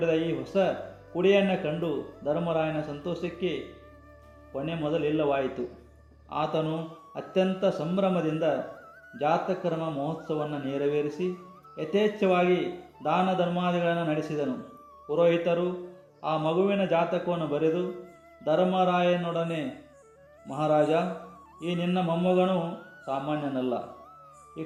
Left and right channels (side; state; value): both; identical; correlation 1.00